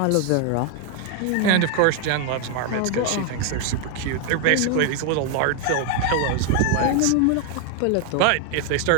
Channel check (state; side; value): different; both; correlation 0.00